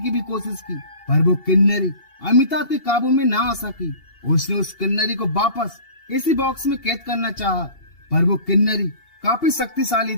भी कोशिश की, पर वो किन्नरी अमिताभ के काबू में ना आ सकी। उसने उस किन्नरी को वापस इसी बॉक्स में कैद करना चाहा, पर वो किन्नरी काफी शक्तिशाली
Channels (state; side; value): late; right; 2.8 ms